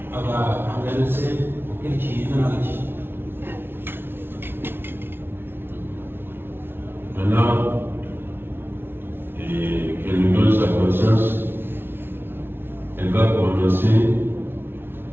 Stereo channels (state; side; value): late; left; 0.11 ms